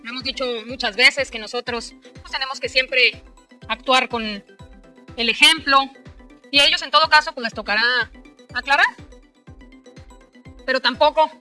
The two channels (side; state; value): both; identical; correlation 1.00